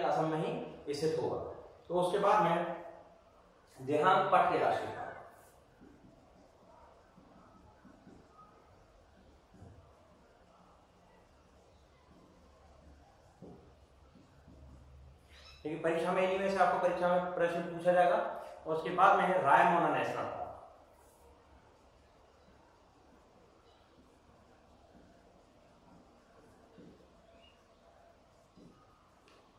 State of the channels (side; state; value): both; identical; correlation 1.00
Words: में ही स्थित होगा। तो उसके बाद में देहांगपट के राष्ट्रीय पार्क। देखिए परीक्षा में इन्हीं में से आपको परीक्षा में प्रश्न पूछा जाएगा। और उसके बाद में है रायमोना नेशनल पार्क।